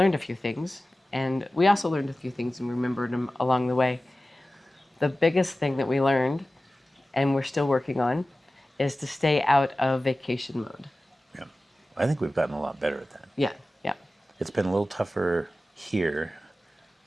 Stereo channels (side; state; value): both; normal; correlation 0.96